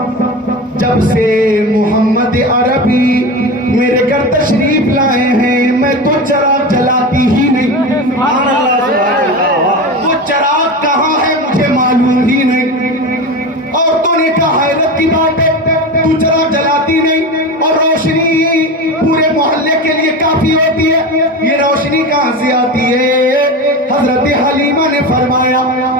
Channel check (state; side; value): normal; both; correlation 0.25